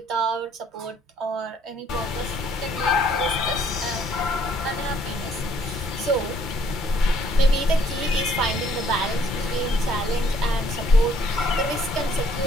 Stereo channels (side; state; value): both; normal; correlation 0.64